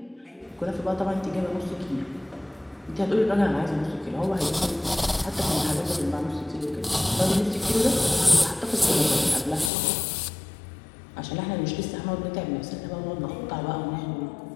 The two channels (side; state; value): right; drops out; at 9.7 s